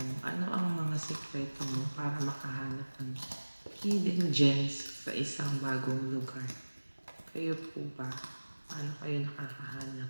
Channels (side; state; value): both; inverted; correlation -1.00